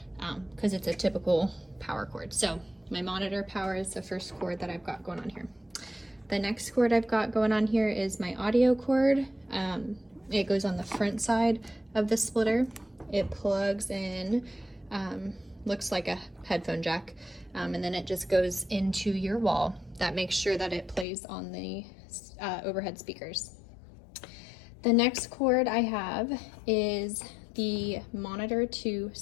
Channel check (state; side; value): drops out; right; at 21.1 s